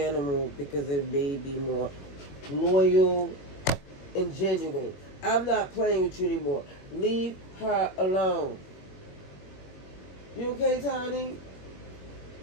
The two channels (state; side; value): late; right; 21 ms